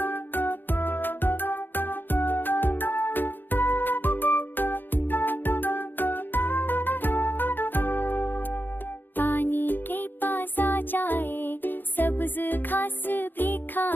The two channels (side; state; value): right; late; 0.093 ms